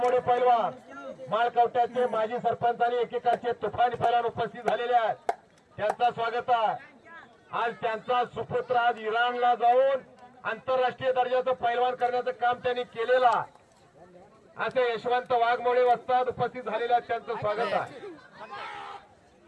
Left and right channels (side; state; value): both; identical; correlation 1.00